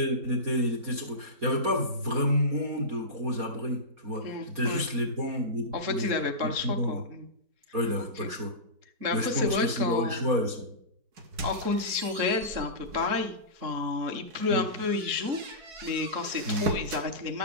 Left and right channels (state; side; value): late; left; 4.2 ms